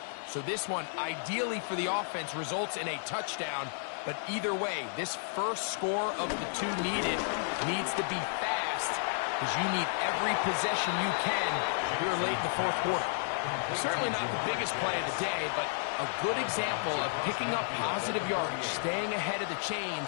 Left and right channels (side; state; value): right; silent; 56 dB below the other